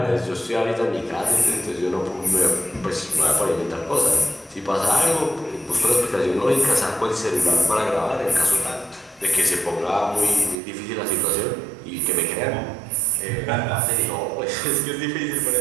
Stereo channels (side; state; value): left; drops out; at 10.6 s